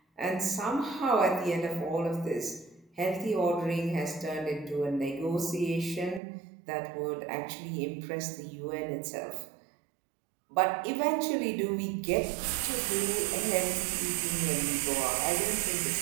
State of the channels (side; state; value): left; drops out; at 6.2 s